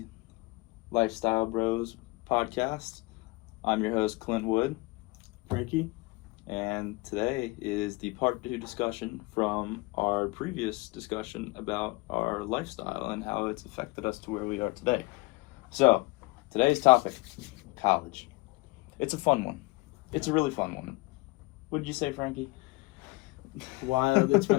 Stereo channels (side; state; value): right; quieter; 24.0 dB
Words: Lifestyle Bros podcast. I'm your host, Clint Wood. Frankie. And today is the part 2 discussion from our previous discussion about our lifestyle and how it's affected us to where we are today. So, today's topic, college. It's a fun one. It's a really fun one. What did you say, Frankie? Wild. It's